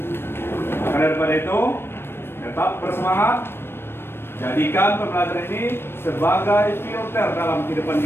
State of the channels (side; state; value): right; late; 0.11 ms